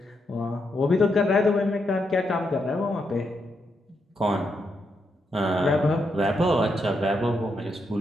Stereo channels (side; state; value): both; normal; correlation 0.81